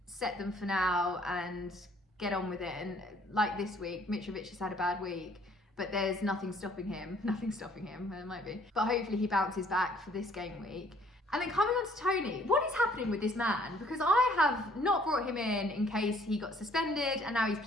set them for now and get on with it. And like this week, Mitrovic has had a bad week, but there's nothing stopping him. Nothing stopping him, there might be. But hopefully he bounces back for this game week. And then coming on to Tony, what is happening with this man? Because I have not brought him in case he got suspended and now he's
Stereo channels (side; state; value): both; normal; correlation 0.61